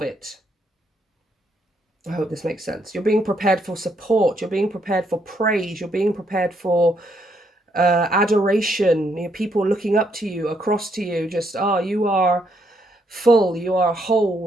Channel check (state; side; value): normal; both; correlation 0.74